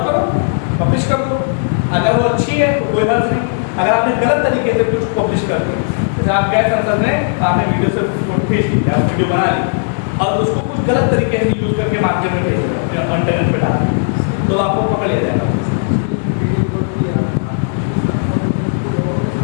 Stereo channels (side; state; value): right; silent; digital silence